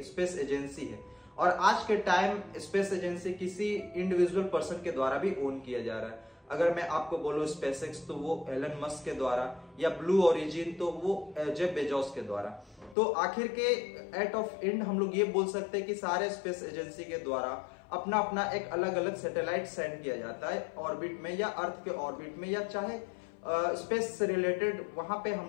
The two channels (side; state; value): right; drops out; at 13.0 s